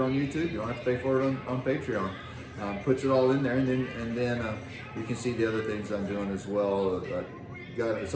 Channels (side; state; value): both; identical; correlation 1.00